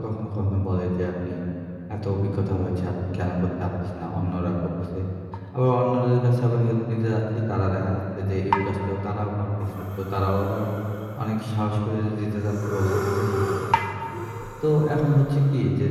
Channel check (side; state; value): both; identical; correlation 1.00